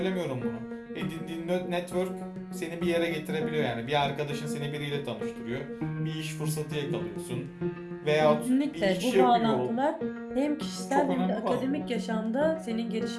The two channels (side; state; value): both; identical; correlation 1.00